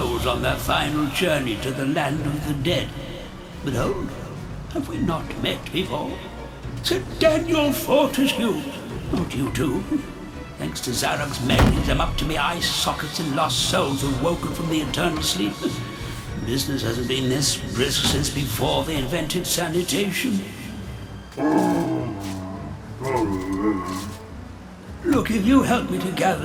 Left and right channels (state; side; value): identical; both; correlation 1.00